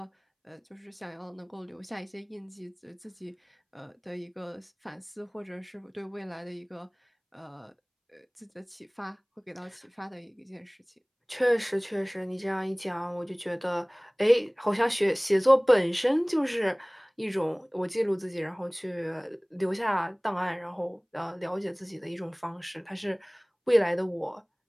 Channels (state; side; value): identical; both; correlation 1.00